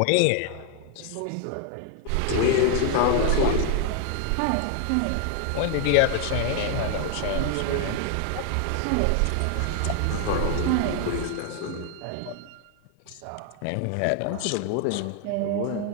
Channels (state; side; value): different; both; correlation 0.00